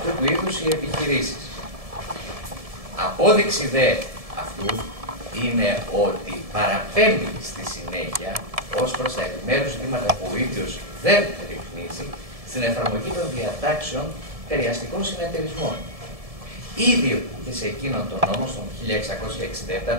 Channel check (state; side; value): late; left; 1.7 ms